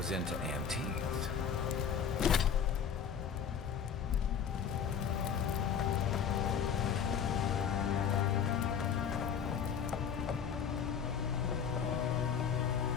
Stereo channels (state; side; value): quieter; right; 7.4 dB